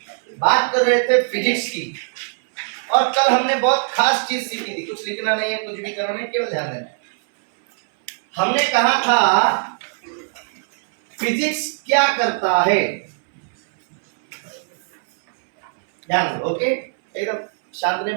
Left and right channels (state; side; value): silent; left; 62 dB below the other